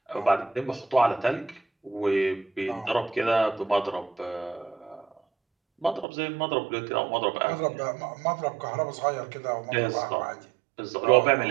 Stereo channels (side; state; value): left; drops out; at 6.1 s